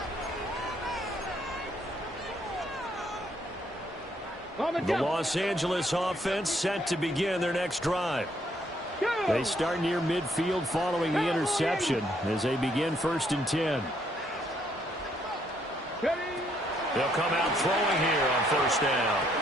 The Los Angeles offense set to begin their next drive. They start near midfield following the interception as they begin 1st and 10. They'll come out throwing here on 1st down.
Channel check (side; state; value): both; normal; correlation 0.70